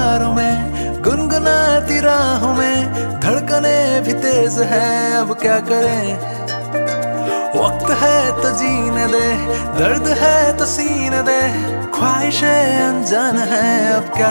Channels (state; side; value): inverted; both; correlation -1.00